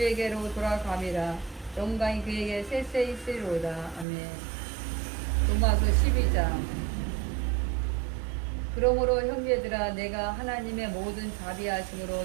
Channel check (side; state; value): left; drops out; at 4.0 s